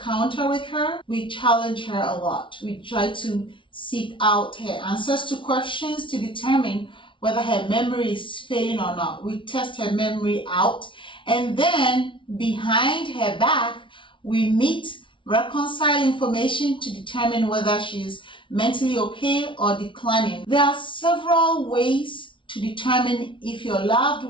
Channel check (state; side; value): late; right; 0.25 ms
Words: with her, we challenge her a lot. We try to seek out her answers to questions to determine whether her memory is failing or not. We test her memory out, and then behind her back, we meet, reconcile information to determine whether she's mentally okay or declining. There are several ways to determine if your loved